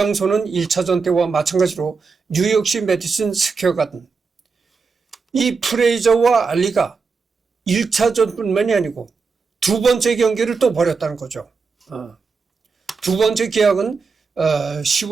1차전 때와 마찬가지로 뉴욕시 메디슨 스퀘어 가든. 이 프레이저와 알리가 1차전뿐만이 아니고 두 번째 경기를 또 벌였다는 거죠. 두 번째 계약은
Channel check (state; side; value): quieter; left; 4.8 dB